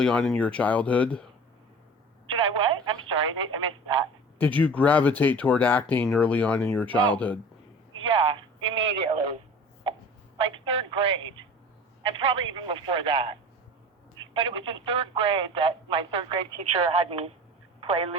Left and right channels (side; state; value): both; normal; correlation 0.39